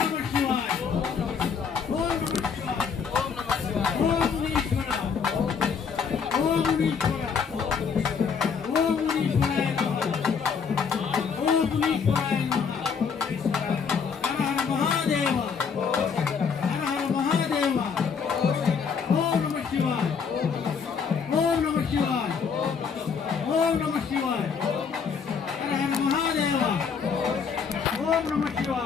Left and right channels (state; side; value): quieter; right; 6.2 dB